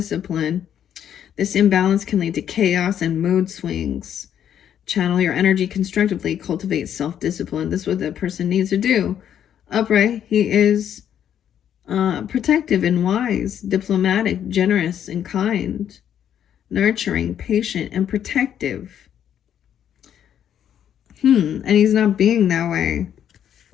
This imbalance can lead to chaos and mood swings. Channel your energy constructively. Cultivate self-discipline. This is what that person needs to do. Upright, he is protective and wise, diplomatic, generous and kind, nurturing, patient, and protective. And he's not being that way.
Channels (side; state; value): right; quieter; 9.6 dB